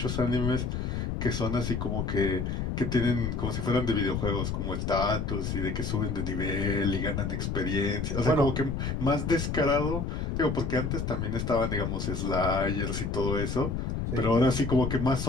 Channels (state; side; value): noise; left; rumble, 2 dB below the sound